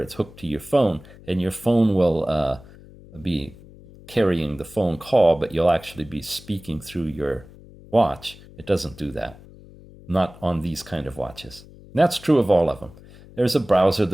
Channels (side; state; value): left; noise; hum, 21 dB below the sound